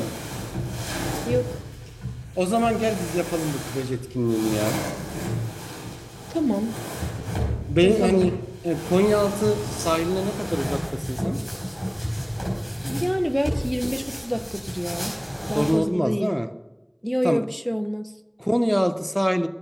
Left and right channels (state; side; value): identical; both; correlation 1.00